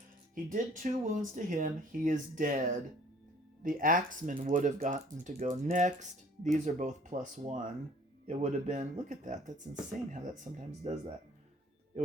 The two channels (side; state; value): both; normal; correlation 0.55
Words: he did 2 wounds to him. He is dead. The axeman would have gotten to go next. These are both +1. It would have been, look at that. That's insane how that sometimes does that. It